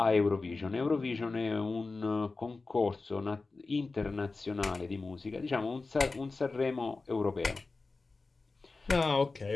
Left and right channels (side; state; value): right; quieter; 3.8 dB